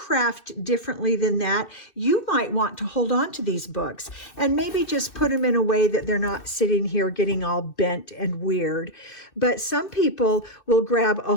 differently than that, you might want to hold on to these books and maybe just put them in a way that they're not sitting here getting all bent and weird. But some people will grab a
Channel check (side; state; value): right; late; 2.6 ms